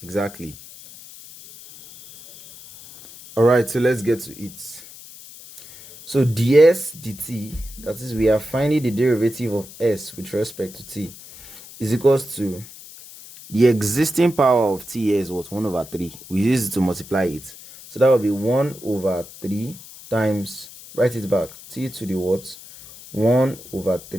Exactly. All right, so let's get to it. So ds dt, that is, we are finding the derivative of s with respect to t, is equals to the existing power of t here is what? 1 over 3. We use it to multiply it. So that will be 1 over 3 times, write it back, t to the what? 1 over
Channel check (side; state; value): left; noise; hiss, 18 dB below the sound